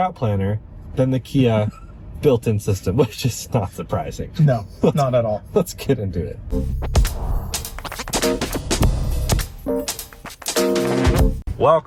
planner than the Kia built-in system, which is not surprising. No, not at all. Let's get into it.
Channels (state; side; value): identical; both; correlation 1.00